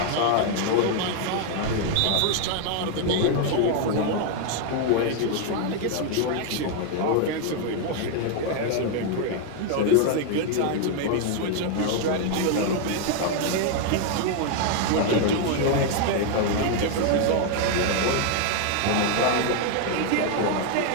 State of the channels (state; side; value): different; both; correlation 0.00